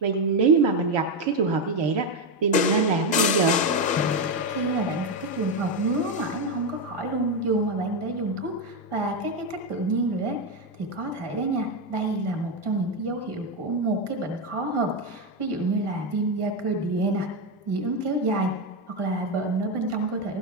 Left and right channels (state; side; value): normal; both; correlation 0.08